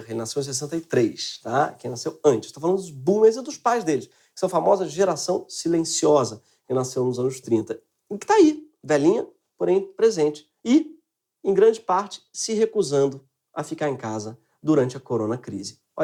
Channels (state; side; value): identical; both; correlation 1.00